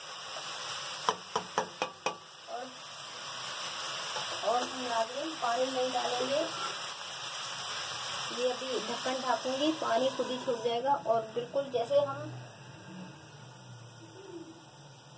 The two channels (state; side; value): identical; both; correlation 1.00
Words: और हम नाज़रीन पानी नहीं डालेंगे। ये अभी ढक्कन ढाकूंगी, पानी खुद ही छूट जाएगा। और बिल्कुल जैसे